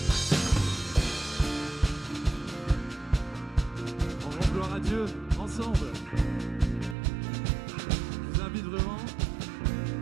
On rend gloire à Dieu ensemble. Je vous invite vraiment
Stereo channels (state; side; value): drops out; left; at 7.0 s